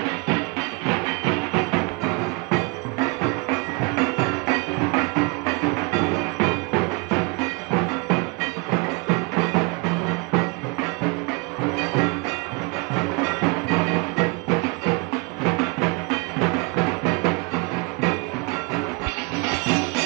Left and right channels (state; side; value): quieter; left; 30.1 dB